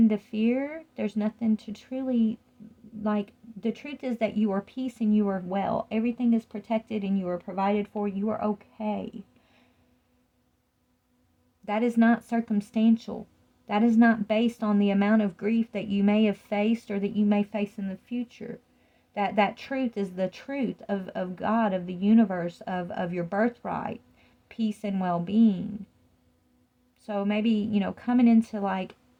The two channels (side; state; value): both; identical; correlation 1.00